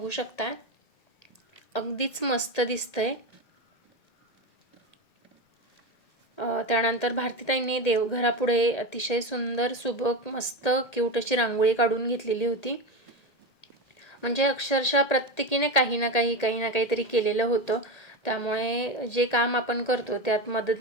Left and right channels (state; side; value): late; right; 1.8 ms